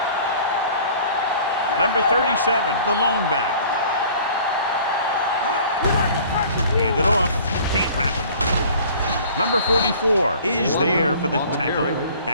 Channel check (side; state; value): both; inverted; correlation -0.49